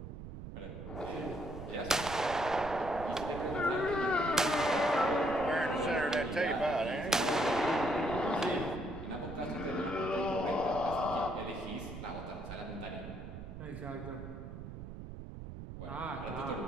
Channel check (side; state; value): right; noise; rumble, 10 dB below the sound